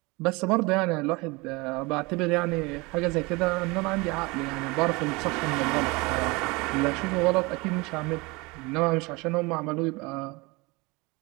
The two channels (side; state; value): left; quieter; 25.3 dB